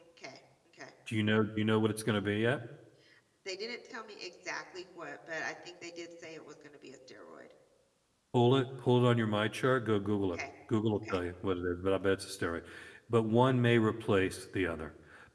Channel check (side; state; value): both; identical; correlation 1.00